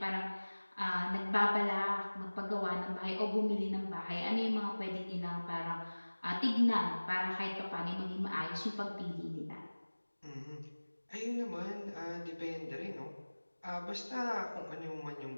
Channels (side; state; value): both; inverted; correlation -1.00